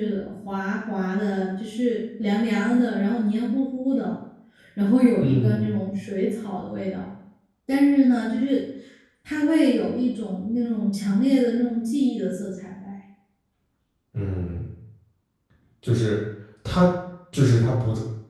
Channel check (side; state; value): both; identical; correlation 1.00